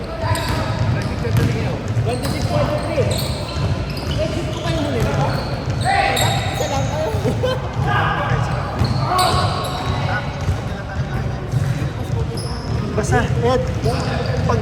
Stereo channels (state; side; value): identical; both; correlation 1.00